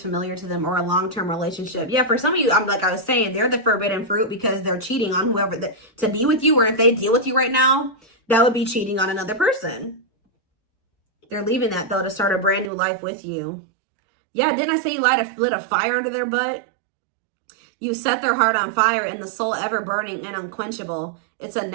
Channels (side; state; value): left; drops out; at 12.7 s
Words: familiar to them or a long-term relationship. Yeah, for some of you, like I was saying, they're the forbidden fruit because they're cheating on whoever to be with you, or if they deal with you right now, that would be cheating on another person. They're leaving that though to start a brand new life with you. Yeah, didn't I say you lit a fire under their butt? You set their heart on fire and the soul ever burning and unquenchable. It's a